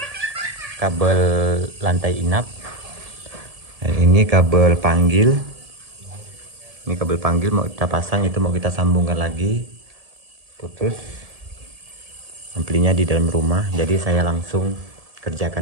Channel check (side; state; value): left; late; 1.7 ms